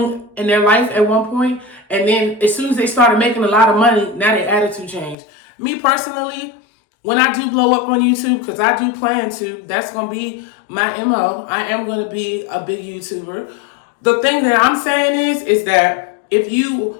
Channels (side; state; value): right; drops out; at 5.2 s